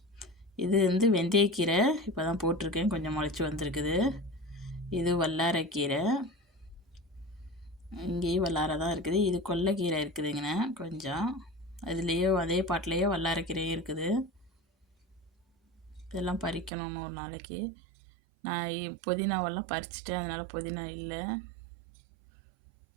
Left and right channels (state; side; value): drops out; left; at 16.7 s